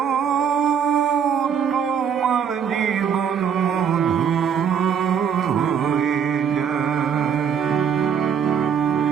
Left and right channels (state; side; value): quieter; left; 7.6 dB